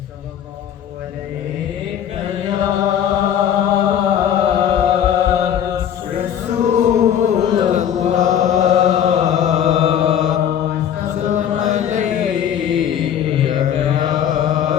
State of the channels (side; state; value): right; quieter; 9.5 dB